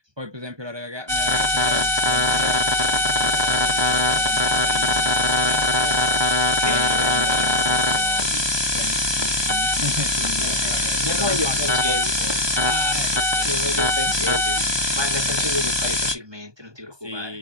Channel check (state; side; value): late; left; 1.2 ms